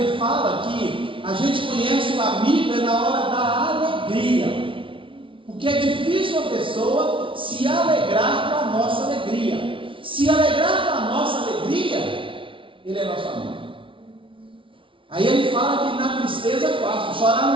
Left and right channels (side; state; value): left; late; 0.25 ms